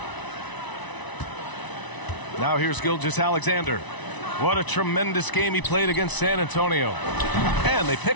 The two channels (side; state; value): right; late; 1.0 ms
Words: Now here's Gilgeous-Alexander. What a tremendous game he played against San Antonio. And they